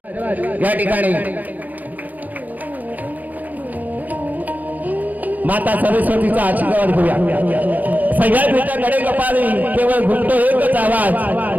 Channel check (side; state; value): left; late; 0.081 ms